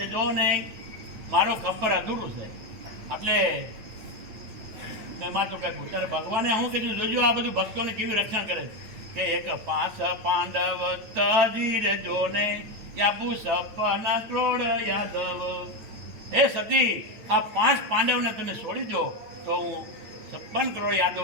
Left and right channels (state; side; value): late; left; 9.2 ms